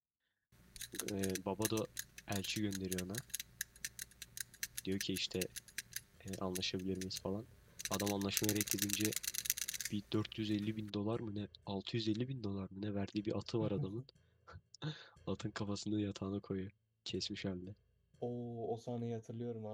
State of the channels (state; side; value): identical; both; correlation 1.00